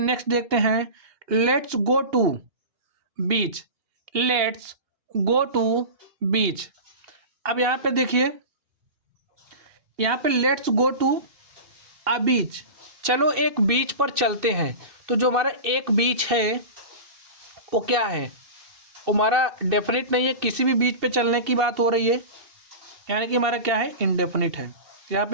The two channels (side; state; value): left; late; 2.6 ms